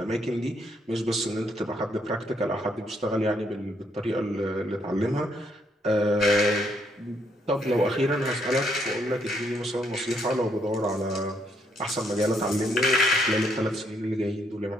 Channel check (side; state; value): both; normal; correlation 0.72